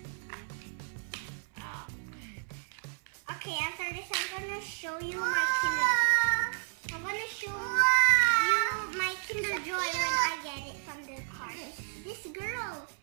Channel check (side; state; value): left; silent; 56 dB below the other